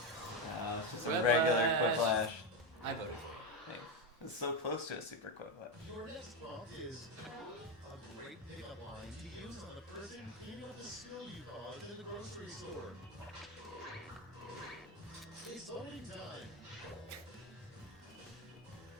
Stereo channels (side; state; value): both; normal; correlation 0.11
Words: just a Quiplash. regular Quiplash. I voted. Thanks. It's so close to a super Quiplash. Your next prompt is a great pickup line to use on the person cleaning up the spill you caused in the grocery store. It's voting time.